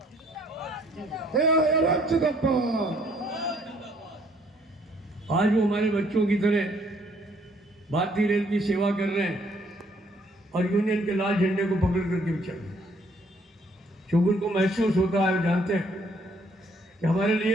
आज वो हमारे बच्चों की तरह भारतीय रेल की सेवा कर रहे हैं और यूनियन के लाल झंडे को पकड़ करके भी चल रहे हैं। क्योंकि उनको महसूस होता है, जानते हैं कि हमारे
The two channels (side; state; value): both; normal; correlation 0.65